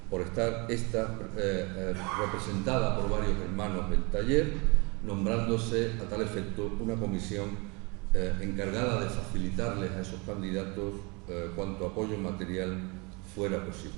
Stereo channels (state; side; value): quieter; left; 28.9 dB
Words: por estar esta representada por varios hermanos del taller, nombrándose a tal efecto una comisión encargada de facilitarles a esos candidatos cuanto apoyo material fuera